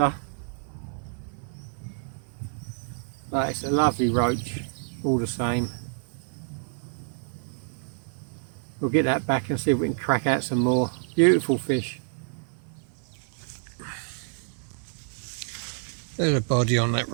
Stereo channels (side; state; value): left; silent; 57 dB below the other